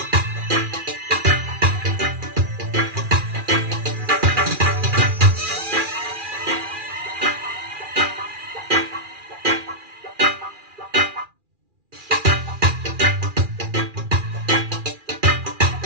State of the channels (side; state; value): left; late; 2.4 ms